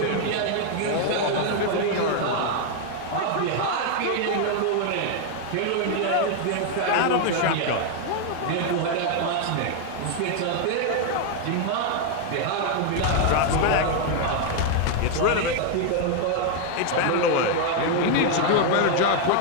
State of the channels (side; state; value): both; different; correlation 0.01